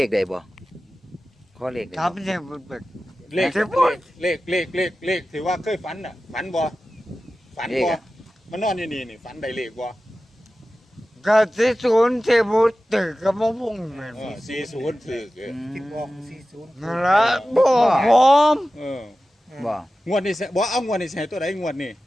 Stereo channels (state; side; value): normal; both; correlation 0.95